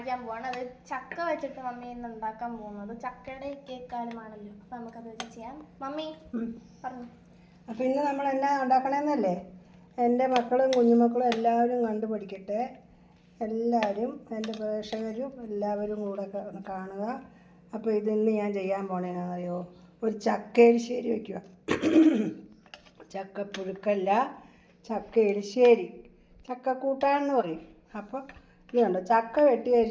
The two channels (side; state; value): both; identical; correlation 1.00